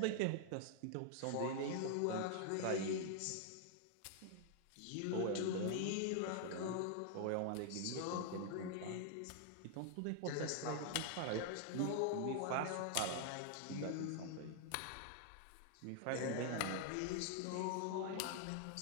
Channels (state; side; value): different; both; correlation 0.00